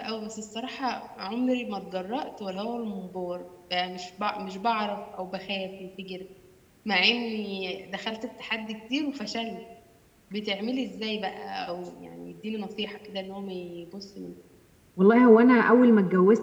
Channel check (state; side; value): identical; both; correlation 1.00